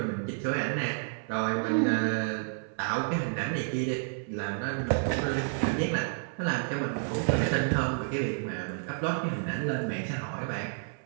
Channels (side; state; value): left; silent; 56 dB below the other